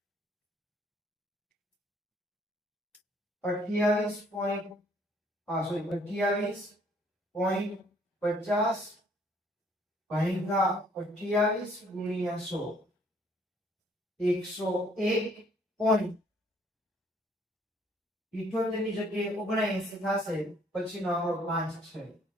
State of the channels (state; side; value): normal; both; correlation 0.62